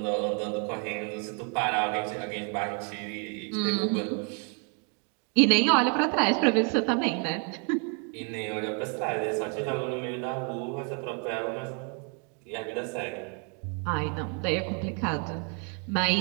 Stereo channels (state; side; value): quieter; left; 38.9 dB